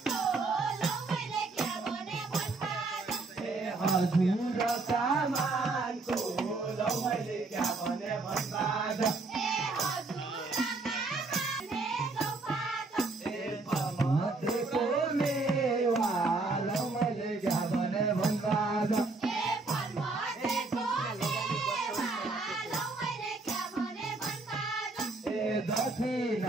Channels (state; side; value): quieter; left; 3.5 dB